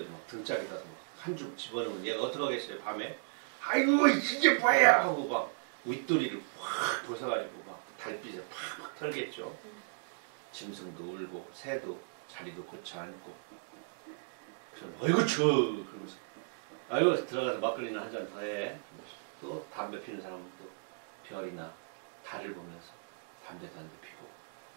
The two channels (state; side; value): silent; left; digital silence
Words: 막 등짝에 가서 한 줌 집어넣으면 얘가 어떡하겠어요. 밤에 아이고 이게 뭐야 하고 막 윗도리를 확 벗어가지고 막 달빛에 팍 털겠죠. 짐승도 울고 새도 자리도 고쳐 앉고, 그럼 어이구 추워 그러면서 아이고 들어가서 막걸리나 한 잔 더 해. 또 담배 피는 사람은 또 별이나 달을 보면서 담배도 한 대 피고.